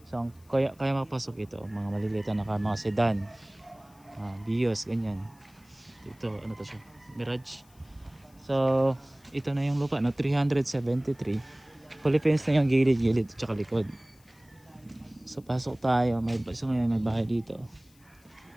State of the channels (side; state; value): left; noise; hiss, 30 dB below the sound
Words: So kaya makapasok ito mga maliliit na mga sedan, Vios ganyan. Ito ano to siya, Mirage. So ito na yung lupa, no, 373. Fully fenced na yung gilid-gilid at likod. So pasok tayo, may bahay dito.